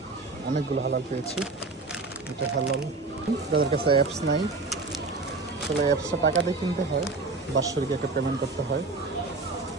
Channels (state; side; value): quieter; left; 3.7 dB